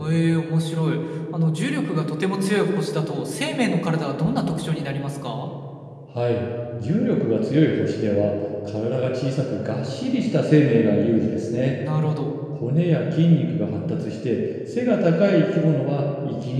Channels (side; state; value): both; identical; correlation 1.00